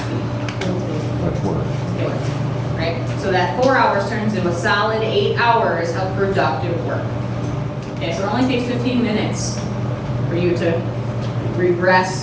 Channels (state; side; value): identical; both; correlation 1.00